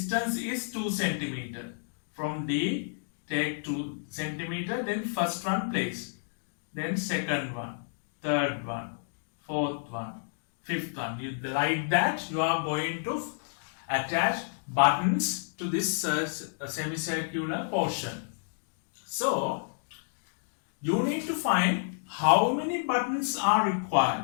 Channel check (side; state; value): right; silent; digital silence